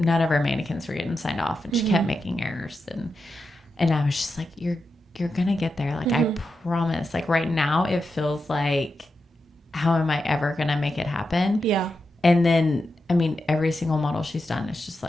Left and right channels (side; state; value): both; normal; correlation 0.88